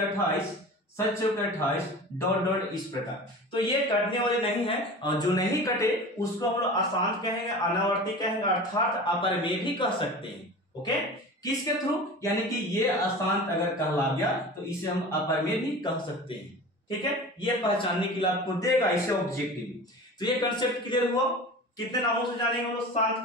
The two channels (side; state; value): both; normal; correlation 0.35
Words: 7 चौके 28, डॉट डॉट, इस प्रकार। तो ये कटने वाले नहीं है, और जो नहीं कटे उसको हम लोग अशांत कहेंगे, अनावर्ती कहेंगे, अर्थात अपरिमेय भी कह सकते हैं। ओके, किसके थ्रू? यानी कि ये अशांत अगर कहला गया तो इसे हम अपरिमेय भी कह सकते हैं। ठीक है, ये पहचानने के लिए आपको देगा इसे ऑब्जेक्टिव। तो ये कंसेप्ट क्लियर हुआ। कितने नामों से जानेंगे हम लोग शांत